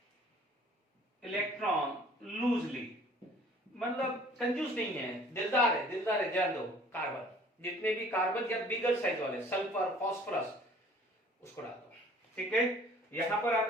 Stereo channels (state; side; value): normal; both; correlation 0.52